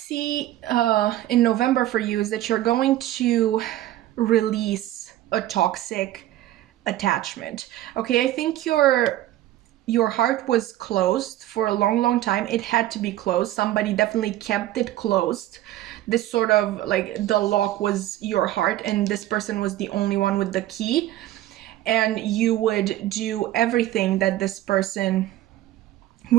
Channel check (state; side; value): quieter; left; 14.3 dB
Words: in November for you is that you're going to release a toxic attachment. Okay, I think your heart was closed for a long time. It had to be closed. Somebody definitely kept it closed. This sort of like the lock was your heart and this person was the only one with the key, and you would do everything that this person